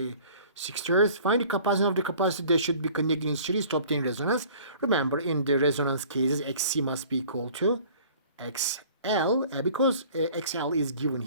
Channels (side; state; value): both; inverted; correlation -0.49